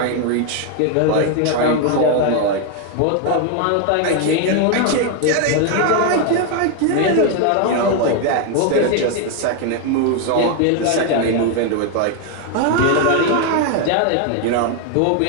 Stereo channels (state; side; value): different; both; correlation 0.01